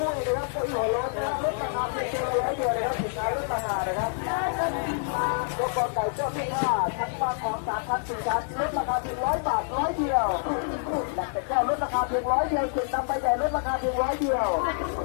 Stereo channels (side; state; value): right; silent; digital silence